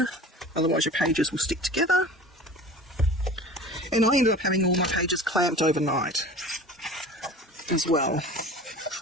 otherwise your pages will stick together. And I ended up having all my pages clamped overnight as well.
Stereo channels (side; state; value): both; normal; correlation 0.40